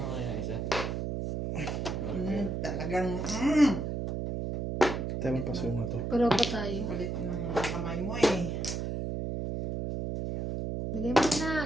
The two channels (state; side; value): noise; right; hum, 2 dB below the sound